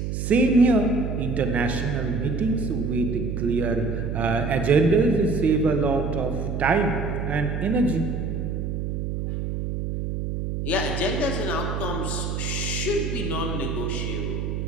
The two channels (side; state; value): right; noise; hum, 3 dB below the sound